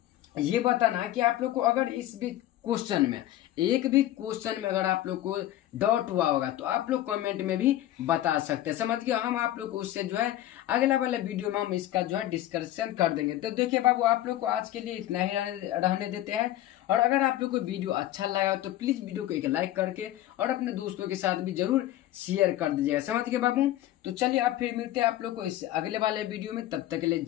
ये बताना कि आप लोग को अगर इस भी क्वेश्चन में, एक भी क्वेश्चन में अगर आप लोग को डाउट हुआ होगा तो आप लोग कमेंट में भी बता सकते हैं। समझ गए। हम आप लोग को उससे जो है अगला वाले वीडियो में हम इसका जो है डिस्कशन कर देंगे। तो देखिए बाबू, आप लोग को आज के लिए इतना ही रहने देते हैं। और अगर आप लोग को वीडियो अच्छा लगा तो प्लीज वीडियो को एक लाइक करके और अपने दोस्तों के साथ भी जरूर शेयर कर दीजिएगा। समझ गए बाबू। तो चलिए अब फिर मिलते हैं आप लोग को इस अगले वाले वीडियो में। तब तक के लिए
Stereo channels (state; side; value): quieter; right; 13.9 dB